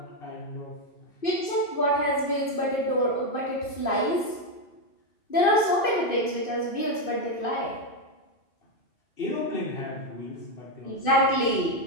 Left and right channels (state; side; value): late; right; 2.6 ms